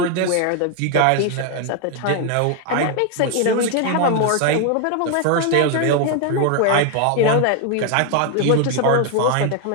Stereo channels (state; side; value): different; both; correlation 0.01